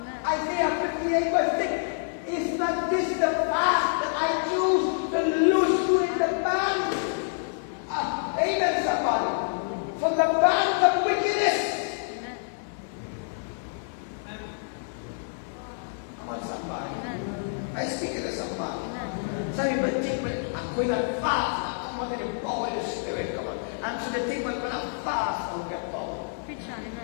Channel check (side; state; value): right; silent; digital silence